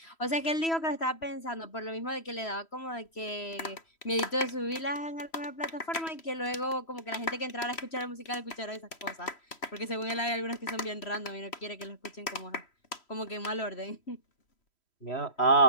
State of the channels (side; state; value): right; late; 3.1 ms